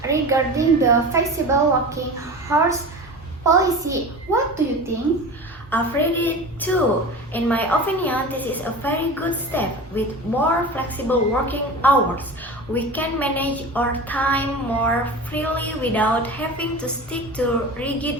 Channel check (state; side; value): normal; both; correlation 0.32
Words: regarding the flexible working hours policy. What do you think? I've read it too. In my opinion, this is a very good step. With more flexible working hours, we can manage our time more freely without having to stick to